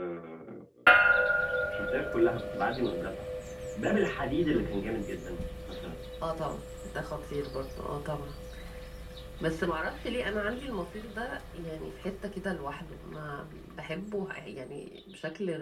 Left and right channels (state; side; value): identical; both; correlation 1.00